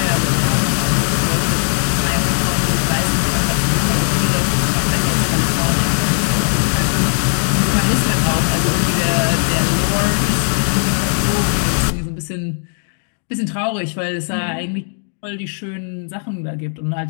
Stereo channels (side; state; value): right; silent; 58 dB below the other